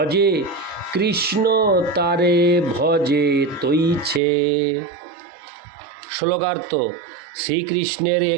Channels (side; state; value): left; drops out; at 4.2 s